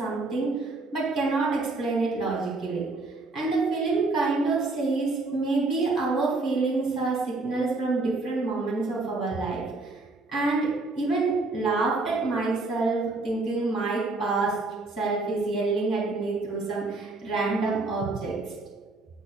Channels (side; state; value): left; quieter; 3.3 dB